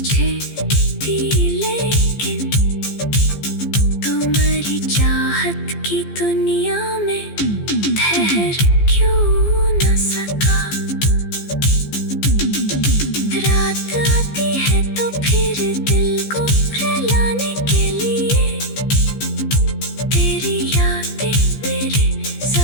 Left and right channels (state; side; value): late; right; 15 ms